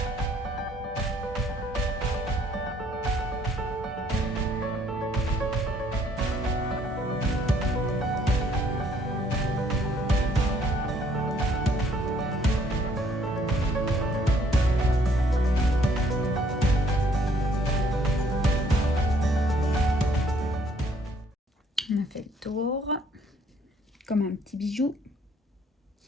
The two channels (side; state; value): both; normal; correlation 0.64